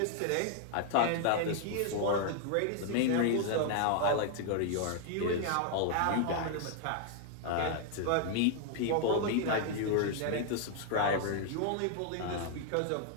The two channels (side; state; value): both; different; correlation 0.00